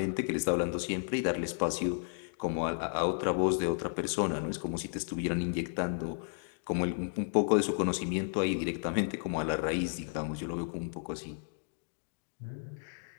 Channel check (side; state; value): right; silent; digital silence